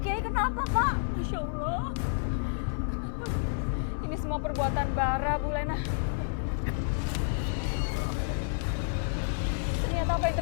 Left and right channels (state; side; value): silent; right; 58 dB below the other